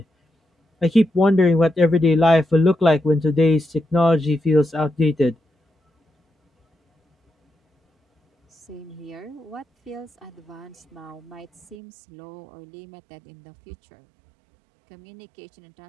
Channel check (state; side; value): drops out; left; at 11.8 s